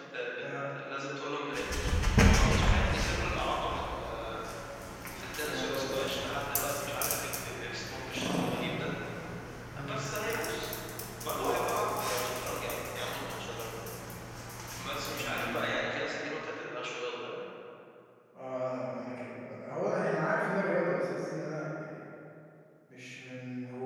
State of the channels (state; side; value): identical; both; correlation 1.00